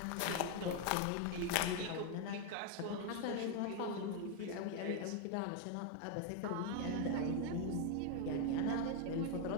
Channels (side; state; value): both; different; correlation 0.00